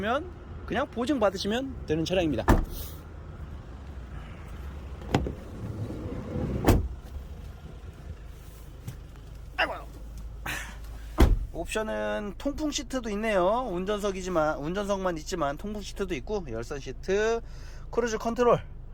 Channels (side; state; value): both; identical; correlation 1.00